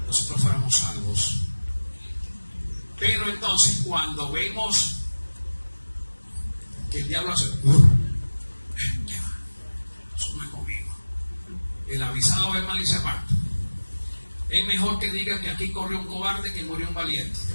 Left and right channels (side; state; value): both; inverted; correlation -1.00